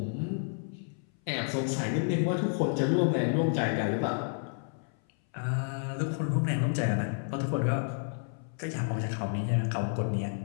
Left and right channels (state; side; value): silent; right; 57 dB below the other